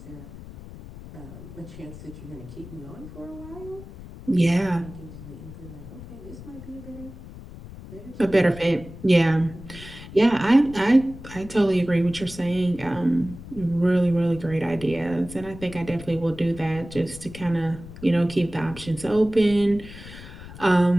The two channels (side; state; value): left; noise; rumble, 15 dB below the sound